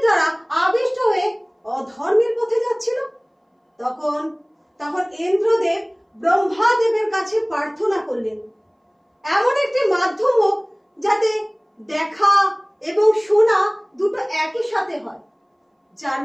দ্বারা আবিষ্ট হয়ে অধর্মের পথে যাচ্ছিল, তখন ইন্দ্রদেব ব্রহ্মাদেবের কাছে প্রার্থনা করলেন এমন একটি মাধ্যম হোক যাতে দেখা এবং শোনা দুটো একই সাথে হয়, যার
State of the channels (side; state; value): both; identical; correlation 1.00